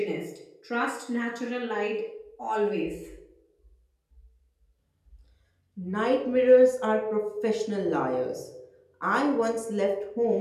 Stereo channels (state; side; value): identical; both; correlation 1.00